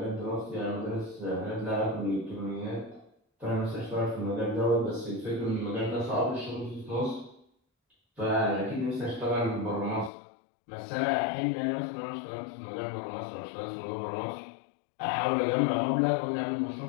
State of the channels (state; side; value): drops out; right; at 10.1 s